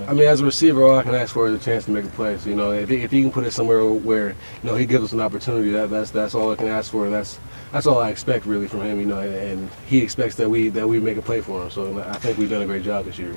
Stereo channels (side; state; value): both; inverted; correlation -1.00